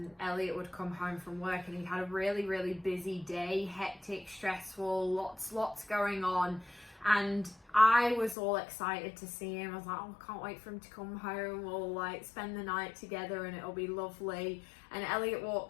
Elliot would come home from work and he had a really, really busy day, hectic, stressful, lots going on. And I was all excited to see him. I was like, oh, I can't wait for him to come home. We'll like spend the night together and it'll be lovely. And Elliot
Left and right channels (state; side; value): drops out; right; at 8.3 s